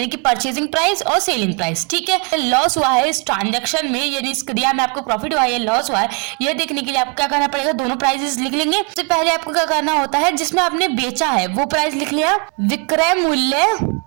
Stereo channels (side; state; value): left; quieter; 34.9 dB